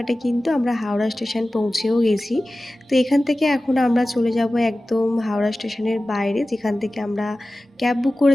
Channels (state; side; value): normal; both; correlation 0.96